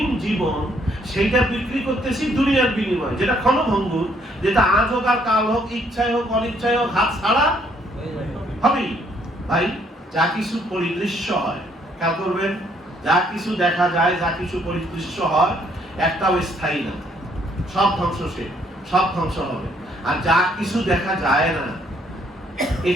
জীবন সেটা বিক্রি করতেছি দুনিয়ার বিনিময়ে, যেটা ক্ষণভঙ্গুর, যেটা আজ হোক আর কাল হোক, ইচ্ছায় হোক অনিচ্ছায় হোক হাত ছাড়া হবেই। ভাই, যা কিছু পরিদৃশ্য হয়, খেয়াল করবেন, যা কিছু দেখা যায়, যা কিছু পরিদৃশ্য হয়, একটাও স্থায়ী না, সব ধ্বংসশীল, সব ধ্বংস হবে। আর যা কিছু দেখা যায় না,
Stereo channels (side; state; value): both; normal; correlation 0.67